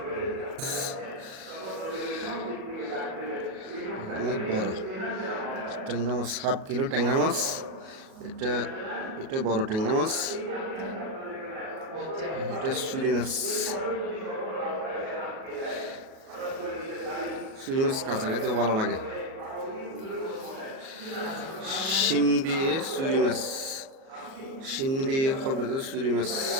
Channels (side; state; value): left; late; 37 ms